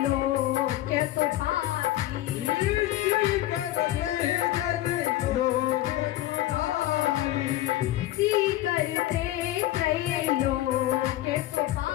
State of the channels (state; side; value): quieter; right; 14.9 dB